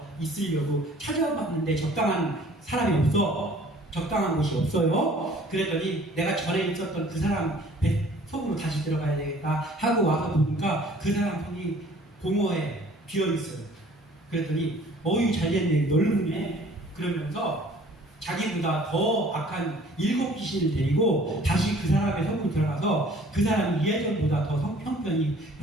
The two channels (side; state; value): both; normal; correlation 0.53